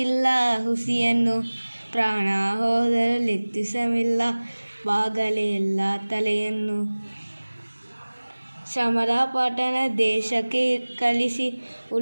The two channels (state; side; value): inverted; both; correlation -1.00